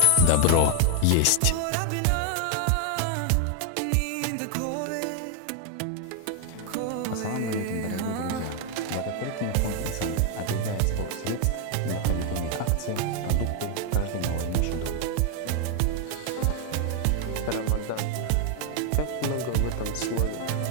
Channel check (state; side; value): different; both; correlation 0.00